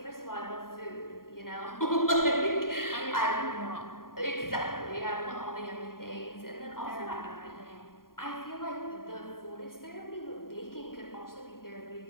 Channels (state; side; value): late; right; 0.91 ms